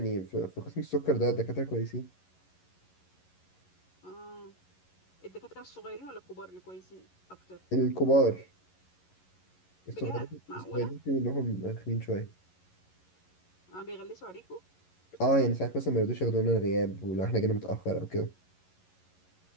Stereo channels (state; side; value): late; right; 11 ms